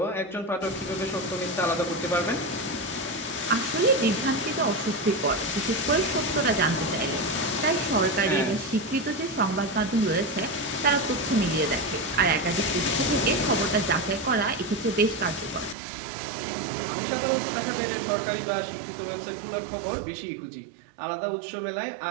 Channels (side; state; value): left; drops out; at 15.8 s